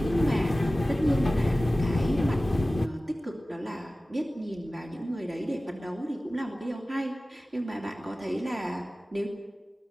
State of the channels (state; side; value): normal; both; correlation 0.97